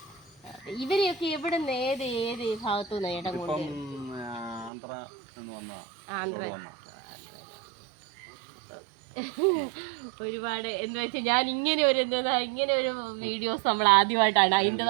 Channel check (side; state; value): left; drops out; at 4.7 s